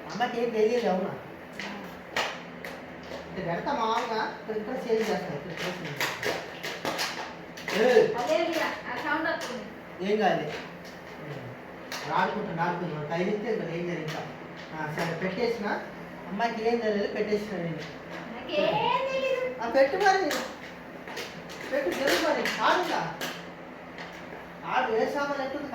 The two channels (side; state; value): both; identical; correlation 1.00